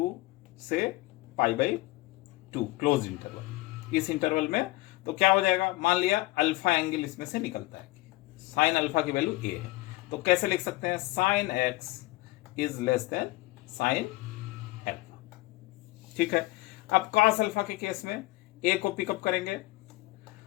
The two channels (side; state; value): right; quieter; 20.0 dB